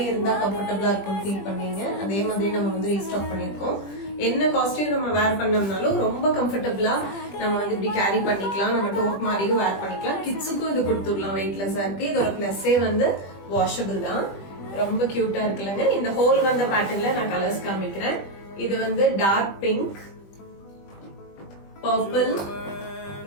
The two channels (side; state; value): right; late; 20 ms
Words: இருந்தா கம்ஃபர்டபுளா இருக்கும் ஃபீல் பண்ணீங்க. அதே மாதிரி நம்ம வந்து ரீஸ்டாக் பண்ணிருக்கோம். என்ன காஸ்டியூம் நம்ம வேர் பண்ணோம்னாலும் ரொம்ப கம்ஃபர்டபுளா நம்ம வந்து இப்படி கேரி பண்ணிக்கலாம். நம்ம டோட் மாதிரியும் வேர் பண்ணிக்கலாம். கிட்ஸுக்கும் இது கொடுத்துடலாம், வெயிட்லெஸ்ஸா இருக்கு. இதோட பிளஸ்ஸே வந்து வாஷபிள் தான். ரொம்ப கியூட்டா இருக்குல்லங்க. இந்த ஹோல் வந்த பேட்டர்ன்ல நான் கலர்ஸ் காமிக்கிறேன். இது வந்து டார்க் பிங்க், பர்பிள்,